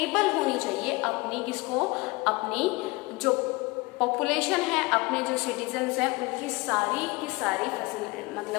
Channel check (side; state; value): right; quieter; 23.8 dB